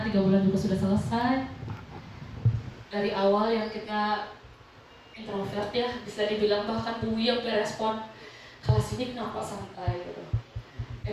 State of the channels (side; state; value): both; identical; correlation 1.00